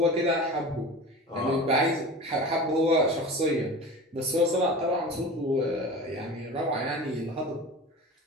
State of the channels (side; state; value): both; normal; correlation 0.34